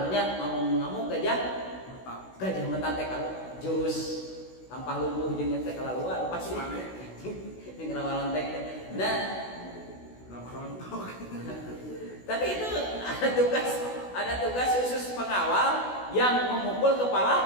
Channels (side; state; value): right; late; 16 ms